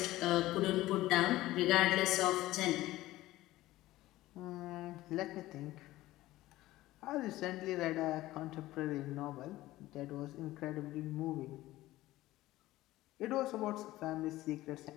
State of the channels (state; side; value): quieter; right; 16.7 dB